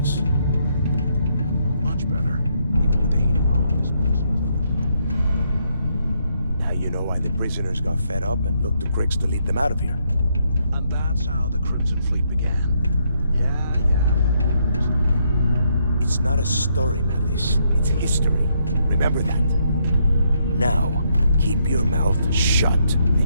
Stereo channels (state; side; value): inverted; both; correlation -0.75